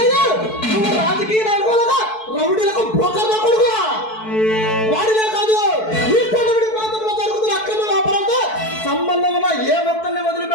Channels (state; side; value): late; right; 4.6 ms